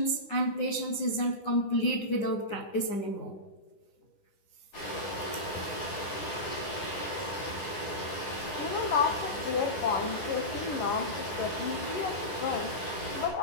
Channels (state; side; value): late; right; 10 ms